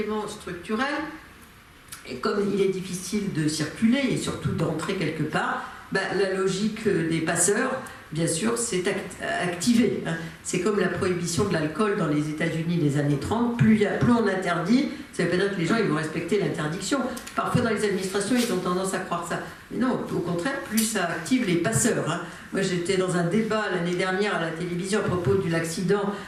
structurel, et comme il est difficile de circuler et surtout d'entrer quelque part, la logique des passeurs, bien sûr, s'est activée. C'est comme la prohibition de l'alcool dans les États-Unis des années 30. Plus on interdit, ça ne veut pas dire que les gens ils vont respecter l'interdiction. Parfois, dans les administrations, ils ont tendance à croire ça. Mais non, au contraire, plus ça active les passeurs. Moi, j'étais dans un débat l'année dernière à la télévision à propos de l'accident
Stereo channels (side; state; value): both; identical; correlation 1.00